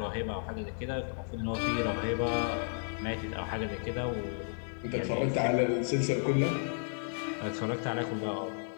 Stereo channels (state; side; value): silent; right; digital silence